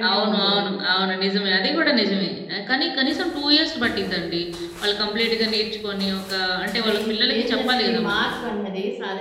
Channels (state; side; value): identical; both; correlation 1.00